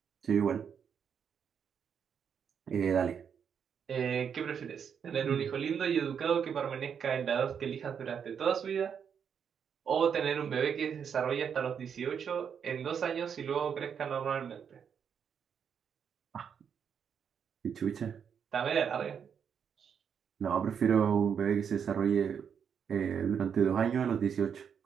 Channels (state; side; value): quieter; left; 7.4 dB